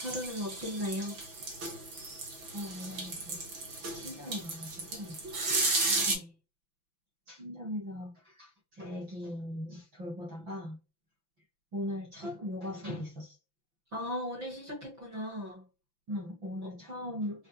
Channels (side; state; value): left; late; 5.9 ms